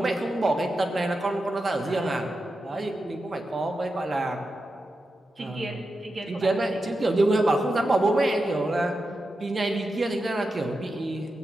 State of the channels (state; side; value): normal; both; correlation 0.89